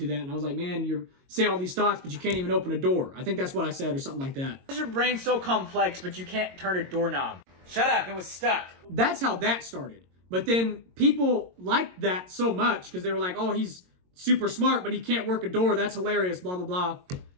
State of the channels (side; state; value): left; late; 22 ms